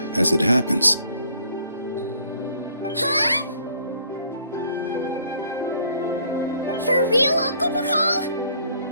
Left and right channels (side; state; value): both; inverted; correlation -0.61